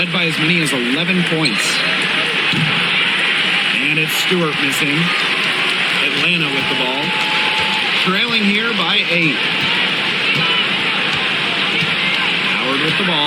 by as many as 11 points. And it's Stewart missing. Atlanta with the ball. Trailing here by 8. Howard with the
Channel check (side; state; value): both; identical; correlation 1.00